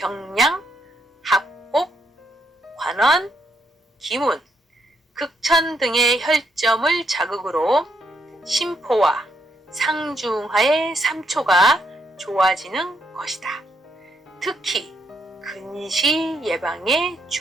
합곡, 관원, 기문, 극천 등의 혈점을 자극으로 심포와 상중하의 3초가 좋아지는 것이다. 특히 근시 예방에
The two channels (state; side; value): normal; both; correlation 0.75